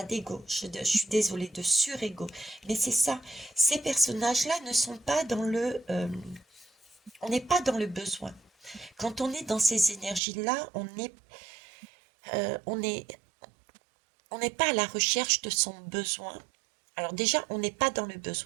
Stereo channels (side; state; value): left; drops out; at 10.2 s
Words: d'ego, je suis désolée, de surego. Mais c'est ça. Ces personnages-là ne sont pas dans le... on n'est pas dans le besoin. Quand on est dans ces énergies-là, on est, on n'est pas à la recherche de son besoin. Alors déjà, on n'est pas dans le